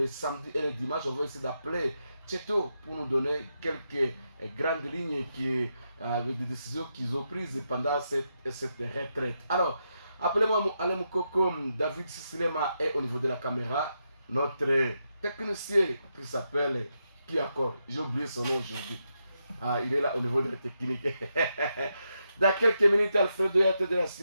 samedi et le dimanche. On va essayer d'appeler Cheto pour nous donner quelques grandes lignes avec des décisions qu'ils ont prises pendant cette retraite. Alors, appelez-moi Alem Koko. David Sissilema est au niveau de la caméra. Notre technicien qui s'appelle, qui encore, j'ai oublié son nom aujourd'hui. Ah, il est là au niveau de la technique. Dans quelques minutes, Alfredo Yate de la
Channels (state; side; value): inverted; both; correlation -0.84